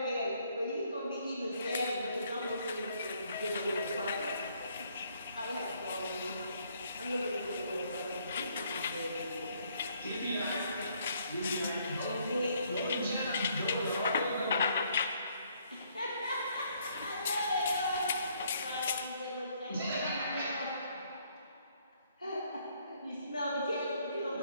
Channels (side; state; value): both; inverted; correlation -0.68